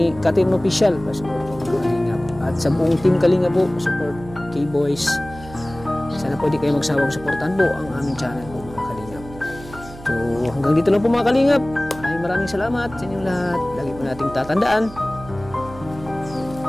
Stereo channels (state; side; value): noise; right; hum, 16 dB below the sound